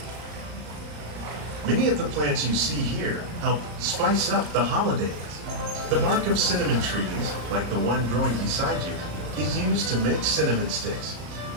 Many of the plants you see here help spice up the holidays. The bark of cinnamon trees, like the one growing beside you, is used to make cinnamon sticks.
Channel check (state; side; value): late; left; 34 ms